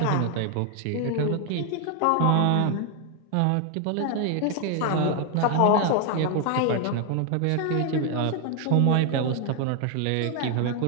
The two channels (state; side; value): different; both; correlation 0.01